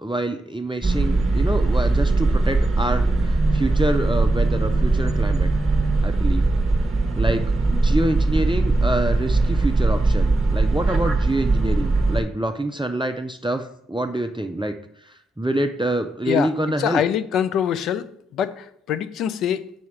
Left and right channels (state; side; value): normal; both; correlation 0.87